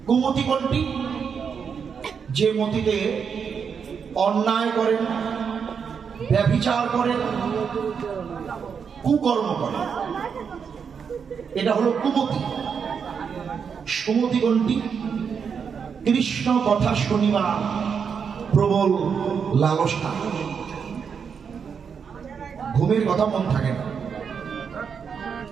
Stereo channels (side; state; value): left; quieter; 6.6 dB